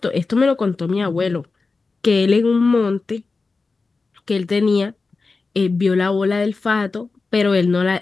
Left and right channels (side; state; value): right; quieter; 4.0 dB